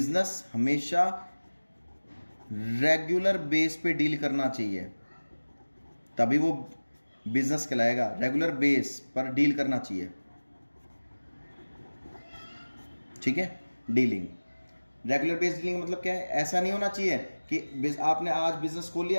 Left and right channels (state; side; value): inverted; both; correlation -1.00